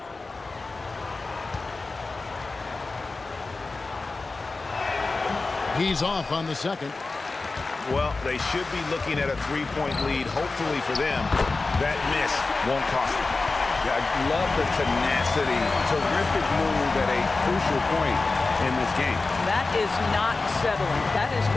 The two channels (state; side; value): quieter; right; 3.7 dB